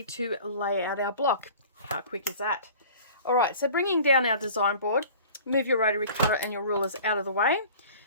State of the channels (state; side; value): inverted; both; correlation -0.44